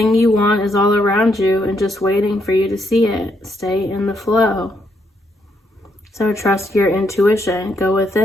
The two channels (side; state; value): both; normal; correlation 0.76